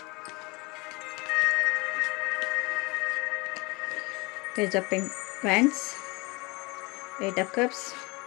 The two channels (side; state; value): right; quieter; 26.2 dB